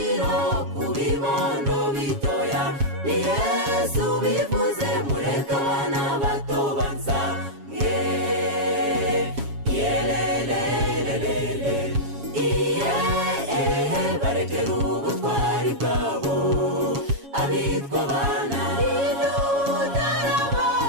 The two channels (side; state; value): left; late; 7.2 ms